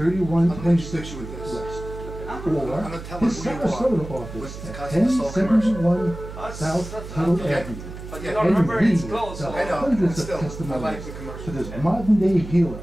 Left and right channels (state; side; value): noise; right; hum, 11 dB below the sound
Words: with this. West, I'm or gonna tell his them who you are. Sarasota office With at Cousin Soul commercial. 1071 South Tuttle okay. Avenue. But you Yeah. don't remember And it's we close. tell So I know, hundreds of still, I like testimonies the commercial. to this modern-day healer